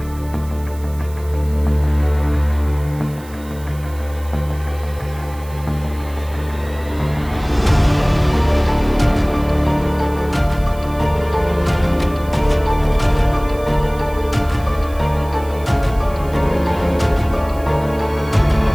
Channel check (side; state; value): right; noise; hiss, 22 dB below the sound